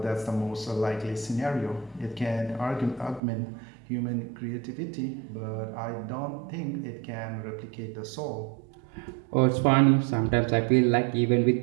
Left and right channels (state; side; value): drops out; left; at 3.2 s